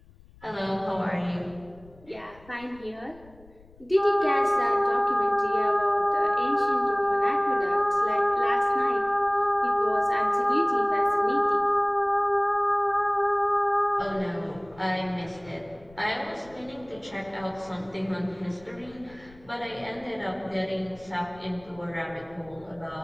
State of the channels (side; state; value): left; noise; rumble, 25 dB below the sound